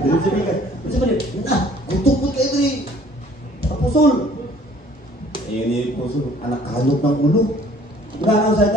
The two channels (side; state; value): both; normal; correlation 0.55